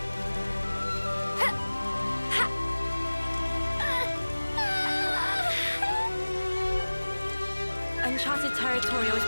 Uncharted territory always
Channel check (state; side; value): inverted; both; correlation -1.00